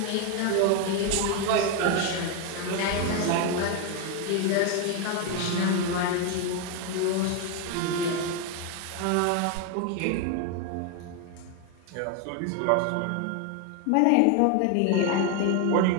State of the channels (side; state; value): both; different; correlation 0.01